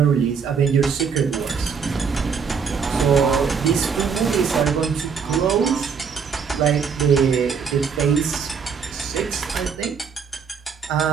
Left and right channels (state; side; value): quieter; left; 6.2 dB